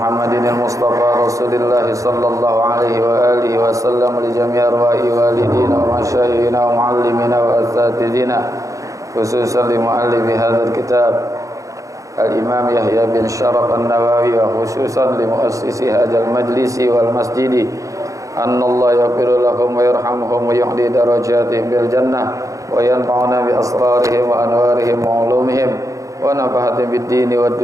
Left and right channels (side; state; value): left; late; 0.16 ms